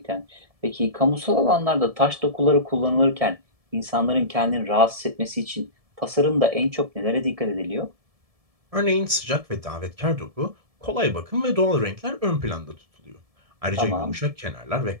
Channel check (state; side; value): late; left; 1.7 ms